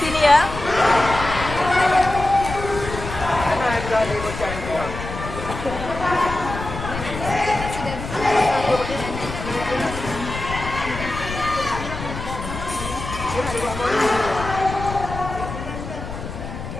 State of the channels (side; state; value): left; noise; rumble, 8 dB below the sound